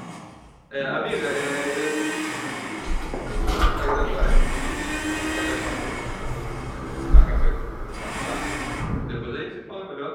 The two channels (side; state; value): both; identical; correlation 1.00